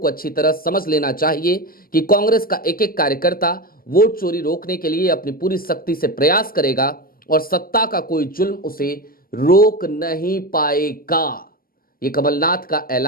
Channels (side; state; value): right; late; 0.43 ms